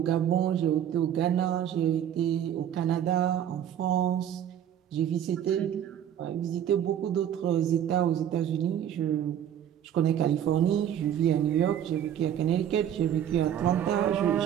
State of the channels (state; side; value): quieter; left; 10.0 dB